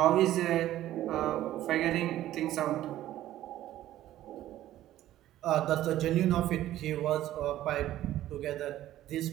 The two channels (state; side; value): quieter; left; 13.7 dB